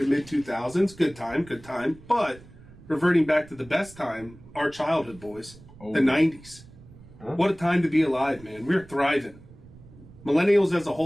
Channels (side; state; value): right; noise; rumble, 21 dB below the sound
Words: mid 2000s. Good time. But reverting back to the best time, our childhood, boys, Oh. the 90s. What a time to be alive, man. We're thriving. Millennials as a